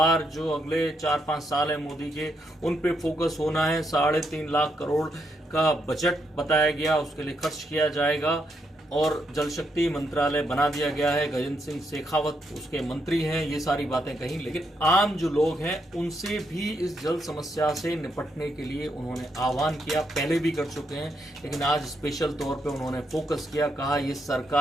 जो अगले 4-5 साल है मोदी के, उन पे फोकस होना है। 3.5 लाख करोड़ का बजट बताया गया, उसके लिए खर्च किया जाएगा और जल शक्ति मंत्रालय बना दिया गया है। गजेंद्र सिंह शेखावत उसके मंत्री हैं। ये सारी बातें कहीं, लेकिन आम जो लोग हैं उनसे भी इस जल समस्या से निपटने के लिए उन्होंने आह्वान किया। पहले भी कर चुके हैं, लेकिन आज स्पेशल तौर पे उन्होंने फोकस किया। कहा ये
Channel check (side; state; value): both; normal; correlation 0.79